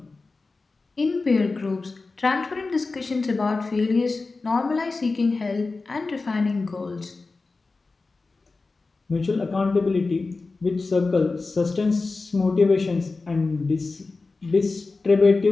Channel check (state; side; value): quieter; right; 3.8 dB